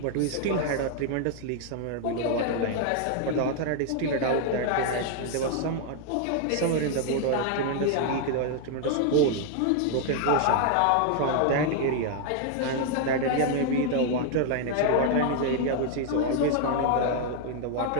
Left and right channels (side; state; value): both; different; correlation 0.00